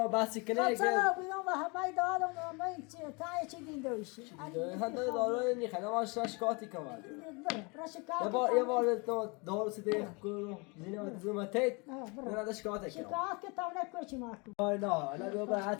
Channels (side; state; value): right; quieter; 29.7 dB